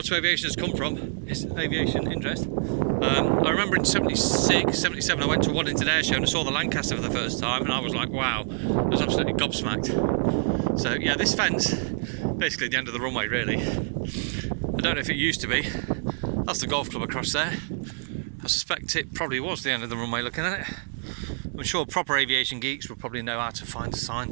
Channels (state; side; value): silent; left; digital silence